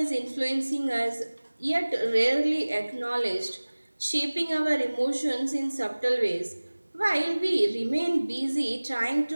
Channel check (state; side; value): inverted; both; correlation -1.00